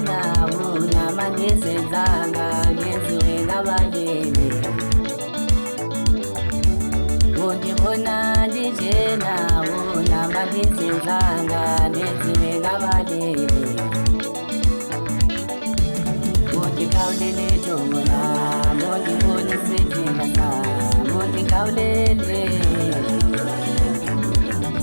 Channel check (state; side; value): inverted; both; correlation -1.00